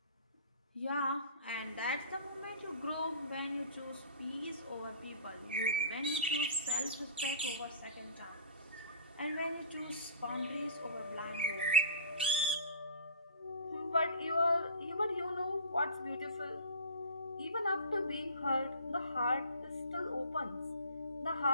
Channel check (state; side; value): inverted; both; correlation -0.40